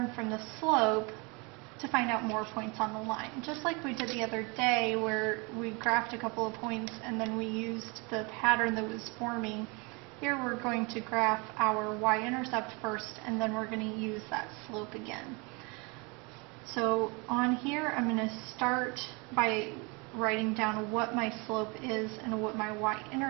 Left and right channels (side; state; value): left; quieter; 29.5 dB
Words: from the slope to find out more points on the line. Just like we did the other day where we graphed a couple of points and then we used the pattern that was forming. Here we're going to graph our y-intercept first, and then we're going to use that slope again. So on here I'm going to start by writing down what my slope is and what my